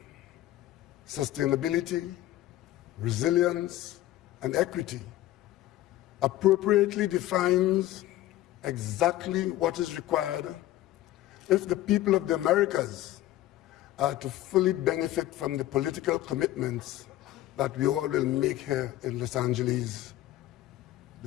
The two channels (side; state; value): right; quieter; 14.8 dB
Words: sustainability, resilience, and equity, appropriately defines exactly what is required if the people of the Americas are to fully benefit from the political commitments that we all will make here in Los Angeles,